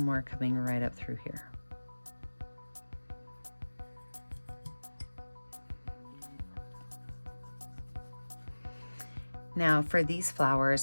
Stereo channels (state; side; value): inverted; both; correlation -1.00